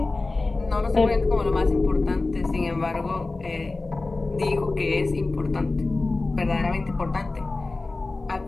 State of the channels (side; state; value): right; quieter; 3.4 dB